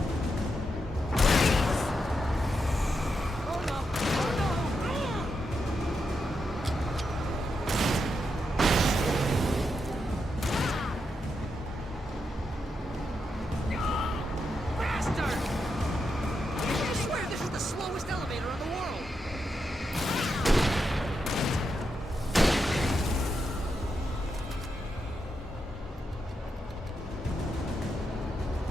Oh no! Oh no! Bastard! I swear this is the slowest elevator in the world!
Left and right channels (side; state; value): both; normal; correlation 0.84